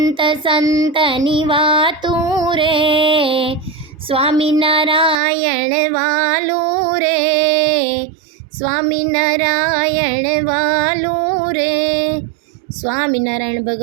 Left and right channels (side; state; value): left; drops out; at 5.2 s